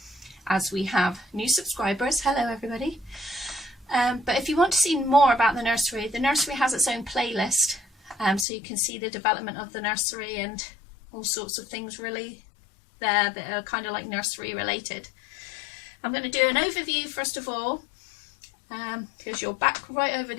as we have new subscribers. Hello everybody. But if you want to see more about the nursery has its own playlist, so you can see the development of the nursery and all sorts of things really there that are kind of like nursery related. I'm going to do an overview first of all, because you're back right over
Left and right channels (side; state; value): right; drops out; at 8.5 s